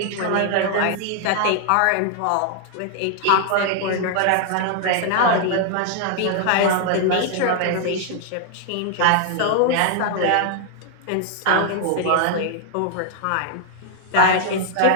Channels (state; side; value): different; both; correlation 0.00